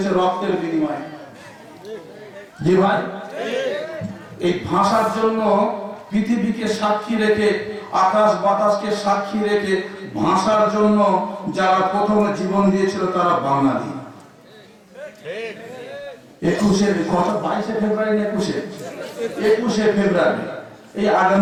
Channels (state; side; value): identical; both; correlation 1.00